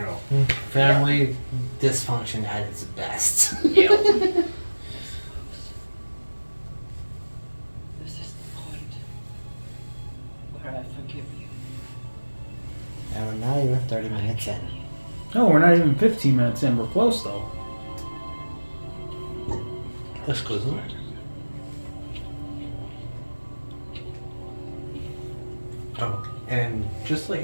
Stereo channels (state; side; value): inverted; both; correlation -1.00